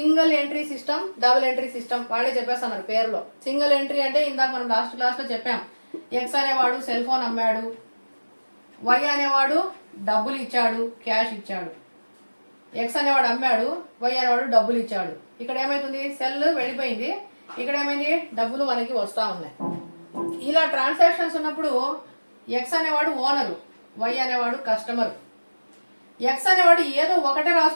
entry system, double entry system వాళ్ళే చెప్పేస్తున్నారు పేరులో. సింగిల్ ఎంట్రీ అంటే ఇందాక మనం లాస్ట్ క్లాస్లో చెప్పాం, ఎక్స్ అనేవాడు సెల్ ఫోన్ అమ్మాడు, వై అనేవాడు డబ్బులు ఇచ్చాడు, క్యాష్ ఇచ్చాడు. ఎక్స్ అనేవాడు అమ్మాడు, వై అనేవాడు డబ్బులు ఇచ్చాడు. ఇక్కడ ఏమైతుంది, సెల్ వెళ్ళిపోయింది, ఇక్కడ ఏమైంది, డబ్బులు మనకి వస్తూ ఉన్నాయి. ఇలా ట్రాన్సాక్షన్స్ ఉన్నప్పుడు ఎక్స్ అనేవాడు ఓనరు, వై అనేవాడు కస్టమర్. ఎక్స్ అనేవాడు ఏదో ఒకటే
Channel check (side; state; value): both; inverted; correlation -1.00